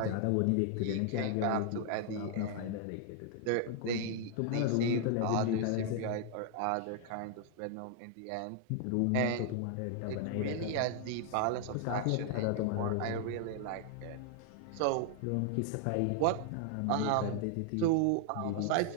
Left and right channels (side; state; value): both; different; correlation 0.00